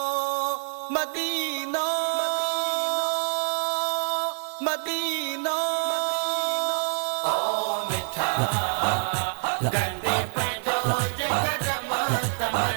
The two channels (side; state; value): left; silent; digital silence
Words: Medina Medina ओ मिठा गंदे पैदो जगत मत